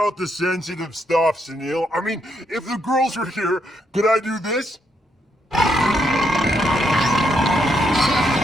the sensitive stuff, Sunil. I mean, if the girls were here, could I do this?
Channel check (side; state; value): both; normal; correlation 0.77